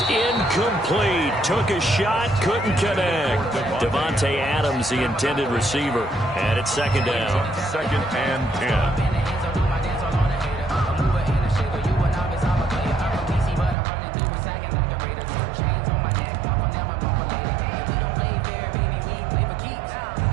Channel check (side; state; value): left; drops out; at 13.8 s